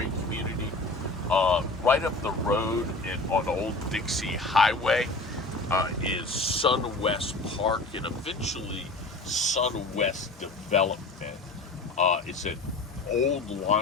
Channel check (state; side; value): quieter; right; 3.2 dB